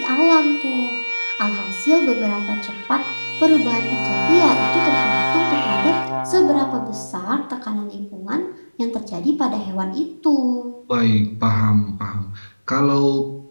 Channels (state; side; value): inverted; both; correlation -1.00